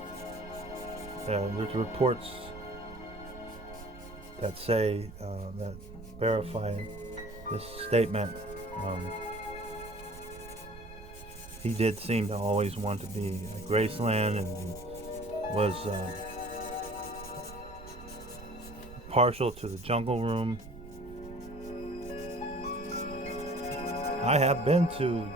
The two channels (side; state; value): right; noise; rumble, 15 dB below the sound